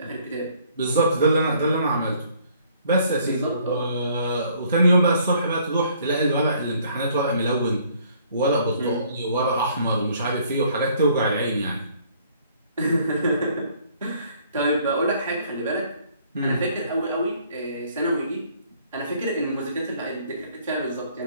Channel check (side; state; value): both; inverted; correlation -0.61